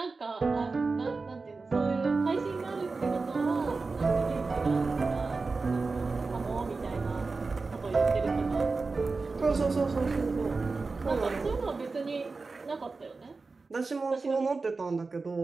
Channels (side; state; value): left; quieter; 4.0 dB